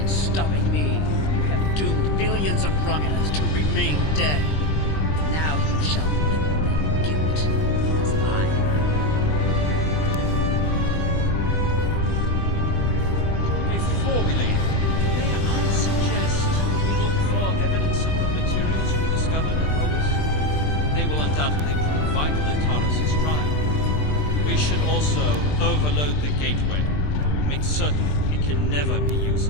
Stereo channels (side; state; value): right; late; 20 ms